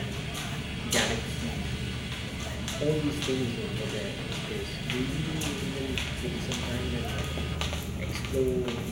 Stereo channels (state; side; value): identical; both; correlation 1.00